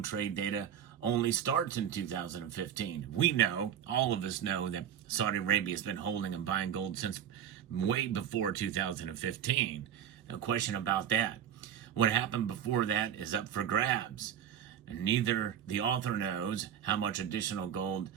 trade data only starts in 2015. We know, all of us know, that Saudi Arabia has been holding and buying gold since way before 2015. No question about that. What happened before that is up for grabs. And neither the author knows how much additional gold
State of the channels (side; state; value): left; quieter; 9.4 dB